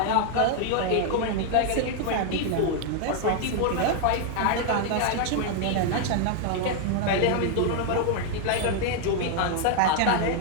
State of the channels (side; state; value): both; different; correlation 0.00